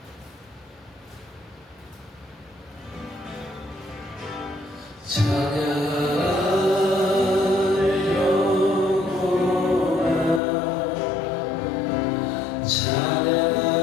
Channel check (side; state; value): right; drops out; at 10.4 s